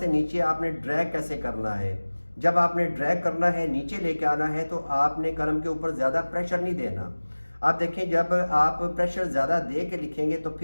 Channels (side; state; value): both; inverted; correlation -1.00